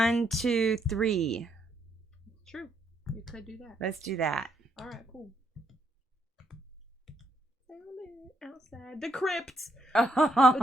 2, 3. True. You could do that. Let's do that. All right, cool. Outside the crypt, just off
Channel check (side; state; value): both; normal; correlation 0.76